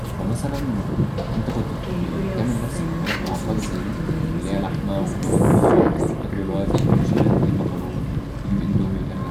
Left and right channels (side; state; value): both; identical; correlation 1.00